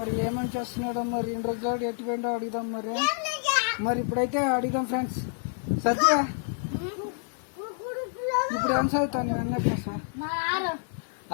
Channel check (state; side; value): silent; right; 59 dB below the other